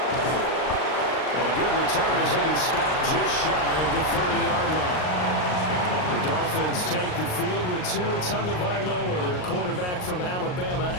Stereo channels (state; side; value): late; right; 39 ms